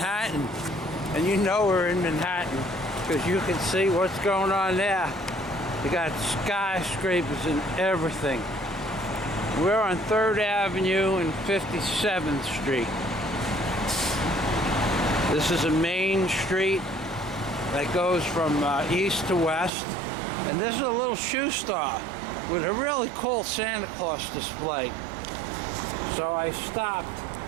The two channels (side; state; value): left; drops out; at 19.7 s